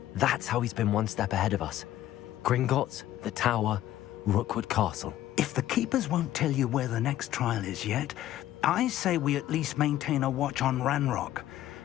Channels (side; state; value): right; quieter; 13.4 dB